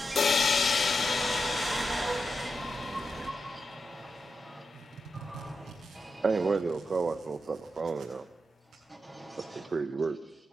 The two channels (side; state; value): both; normal; correlation 0.87